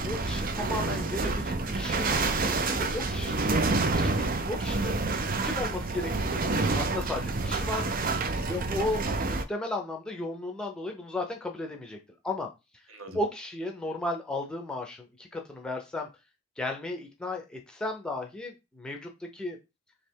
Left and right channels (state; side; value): normal; both; correlation 0.44